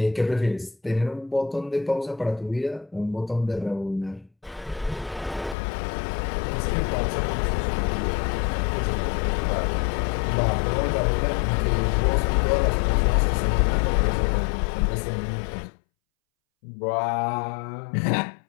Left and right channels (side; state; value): right; drops out; at 5.6 s